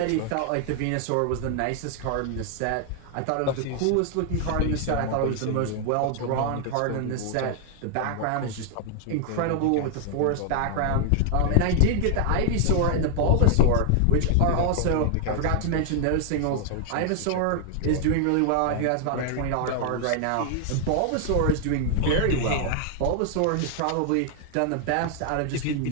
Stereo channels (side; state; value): both; different; correlation 0.00